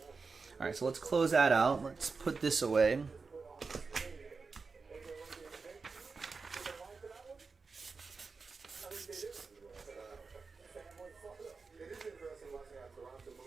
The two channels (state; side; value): quieter; left; 4.5 dB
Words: All right, so let's close that out. Let's put this away.